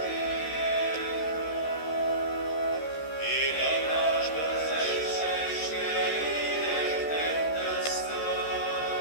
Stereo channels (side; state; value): right; late; 13 ms